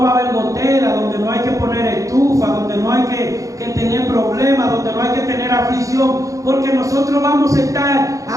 va a haber gotera, donde no hay que poner estufa, donde no hay que tener problemas, donde no hay que tener aflicción, porque nosotros vamos a estar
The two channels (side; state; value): left; late; 0.16 ms